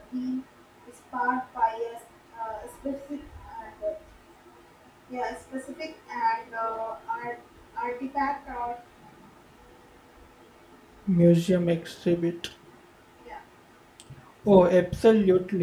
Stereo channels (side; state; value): both; identical; correlation 1.00